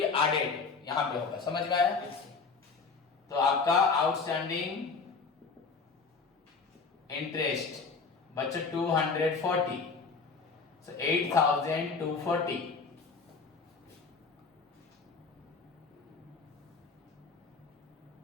added, यहां पे होगा। समझ में आया? तो आपका आउटस्टैंडिंग इंटरेस्ट बच्चों 240, so 8,240।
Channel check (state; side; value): quieter; right; 4.8 dB